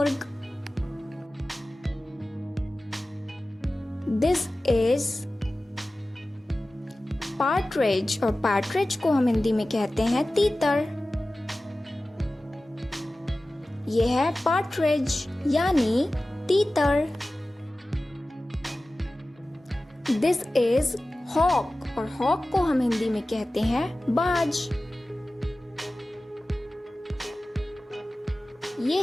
दिस इज पार्ट्रिज और पार्ट्रिज को हम हिंदी में कहते हैं तीतर। ये है पार्ट्रिज यानी तीतर। दिस इज हॉक और हॉक को हम हिंदी में कहते हैं बाज। ये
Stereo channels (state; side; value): normal; both; correlation 0.96